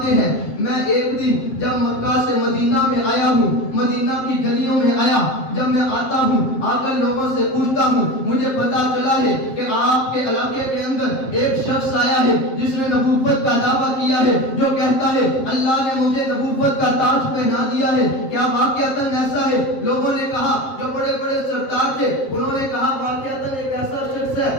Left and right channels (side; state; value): right; late; 7.6 ms